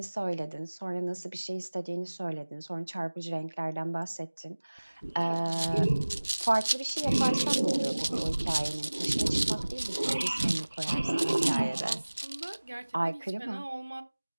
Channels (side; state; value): both; inverted; correlation -1.00